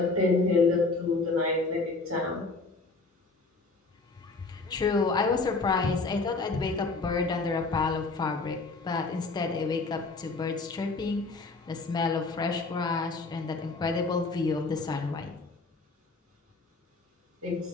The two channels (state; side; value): quieter; right; 3.7 dB